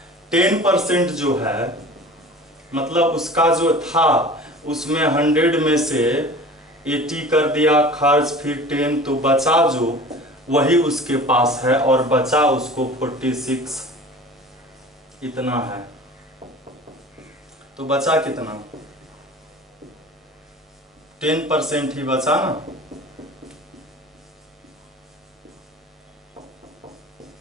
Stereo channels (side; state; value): both; normal; correlation 0.41